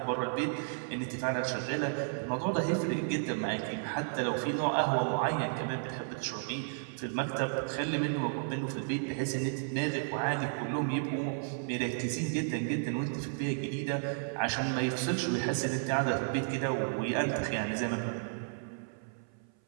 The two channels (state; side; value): silent; left; 56 dB below the other